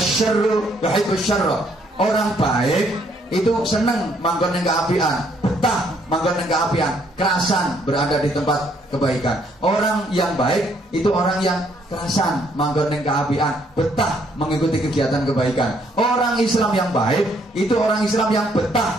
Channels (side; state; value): both; normal; correlation 0.68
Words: yuhibbus syarra. Orang baik itu seneng manggon ning keapian, betah manggon ning keapian, kerasan berada di tempat kebaikan. Orang yang baik itu orang yang kerasan manggon ning keapian, betah mengikuti kegiatan kebaikan. Orang Islam yang baik itu orang Islam yang